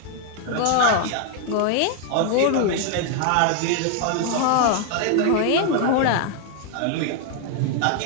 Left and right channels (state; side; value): different; both; correlation 0.00